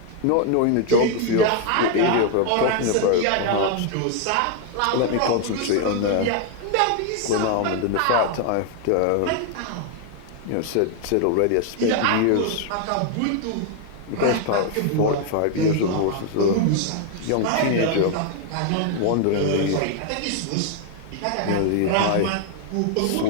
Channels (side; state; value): both; different; correlation 0.00